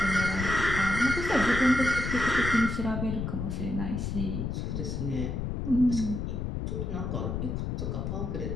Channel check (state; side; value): noise; left; rumble, 3 dB below the sound